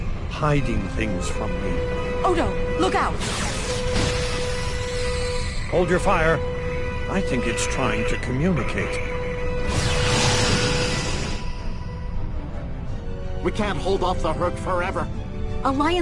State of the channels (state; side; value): identical; both; correlation 1.00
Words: hiding things from me. Odo, look out! Hold your fire. I think it's trying to communicate. We can't hold off the Herc forever.